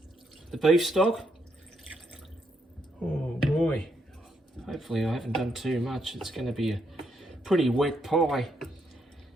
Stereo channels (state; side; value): normal; both; correlation 0.77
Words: beef stock. Oh boy! Hopefully I haven't done too much. It's going to be a pretty wet pie.